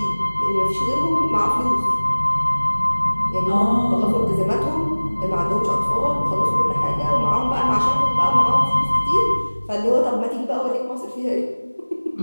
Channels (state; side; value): inverted; both; correlation -1.00